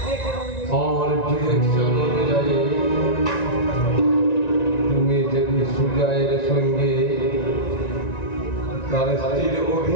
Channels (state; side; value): late; right; 1.9 ms